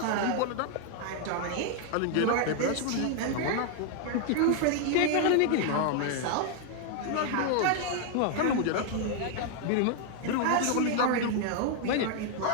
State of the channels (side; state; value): both; different; correlation 0.00